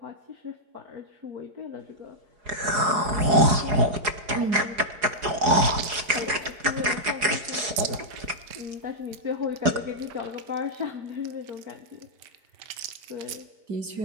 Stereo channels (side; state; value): left; late; 4.8 ms